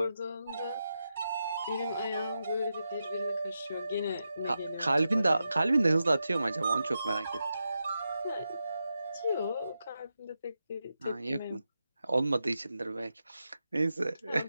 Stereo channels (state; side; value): inverted; both; correlation -0.88